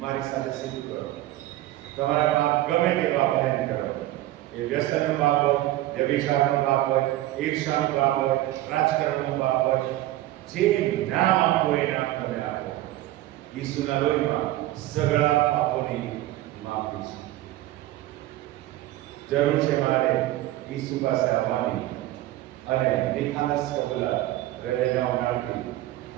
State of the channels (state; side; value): quieter; left; 15.7 dB